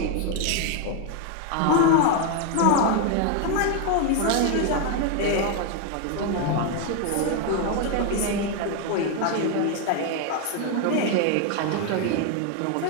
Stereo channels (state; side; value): different; both; correlation 0.01